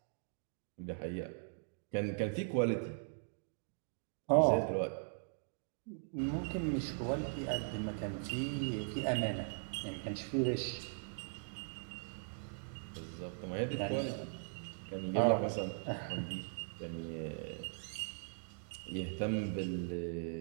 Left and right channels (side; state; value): left; silent; digital silence